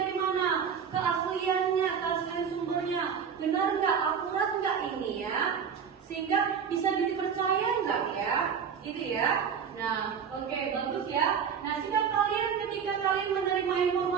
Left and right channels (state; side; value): quieter; left; 7.1 dB